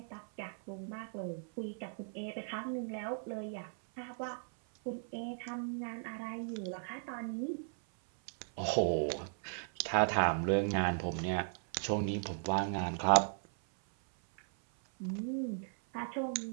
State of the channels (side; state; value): left; silent; 53 dB below the other